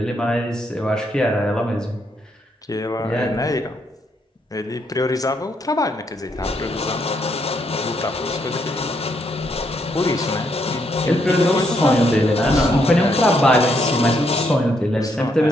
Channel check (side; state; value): both; normal; correlation 0.75